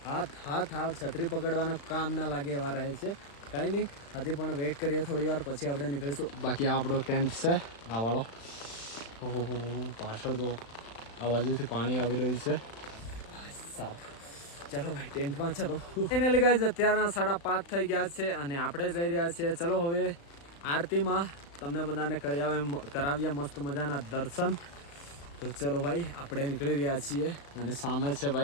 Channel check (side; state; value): right; late; 35 ms